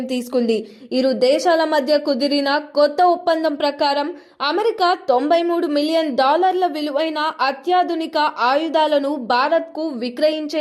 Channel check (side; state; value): both; identical; correlation 1.00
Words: తీసుకుంది. ఇరు దేశాల మధ్య కుదిరిన కొత్త ఒప్పందం ప్రకారం అమెరికా $93 మిలియన్ విలువైన అత్యాధునిక ఆయుధాలను భారత్కు